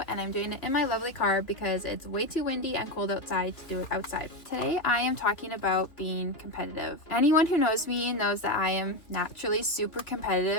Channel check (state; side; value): late; right; 2.9 ms